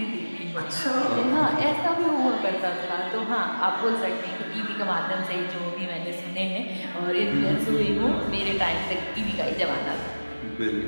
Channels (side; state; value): both; inverted; correlation -1.00